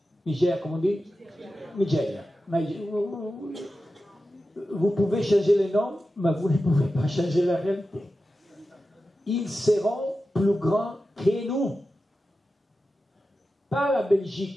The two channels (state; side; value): normal; both; correlation 0.92